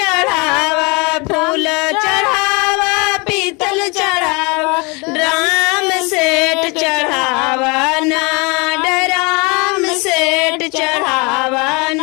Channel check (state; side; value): quieter; right; 29.1 dB